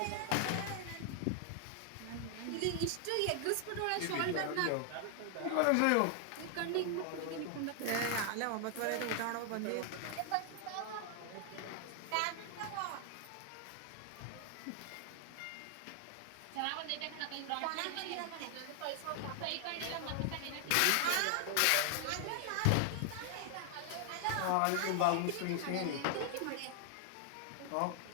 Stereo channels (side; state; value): both; different; correlation 0.00